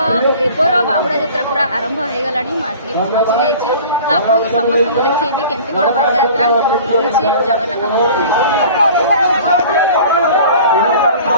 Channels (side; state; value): both; inverted; correlation -0.44